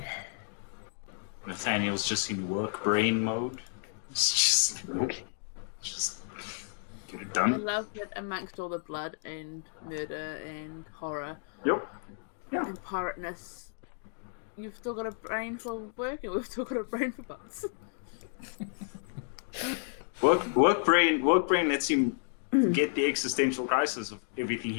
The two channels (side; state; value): right; silent; digital silence